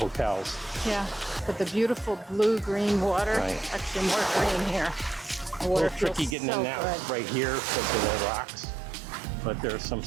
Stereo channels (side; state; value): left; drops out; at 6.4 s